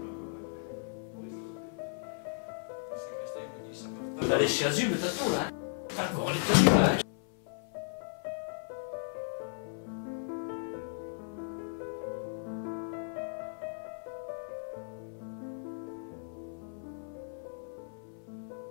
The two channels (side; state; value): right; silent; 54 dB below the other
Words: T'as les chasubles, t'as tout là. T'as encore les tenues là.